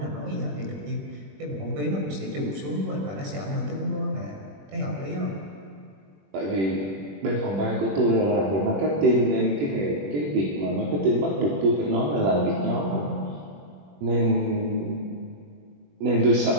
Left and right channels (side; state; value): left; late; 21 ms